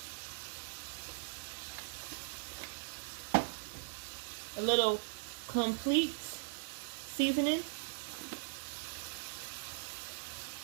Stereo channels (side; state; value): left; silent; digital silence